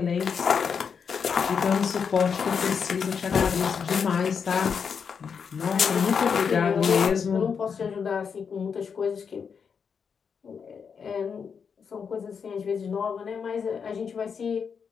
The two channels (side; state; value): right; quieter; 6.4 dB